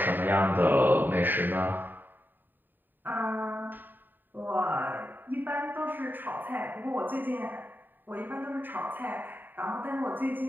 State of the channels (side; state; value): left; late; 0.091 ms